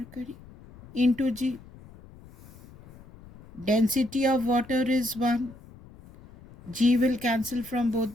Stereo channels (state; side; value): noise; left; rumble, 21 dB below the sound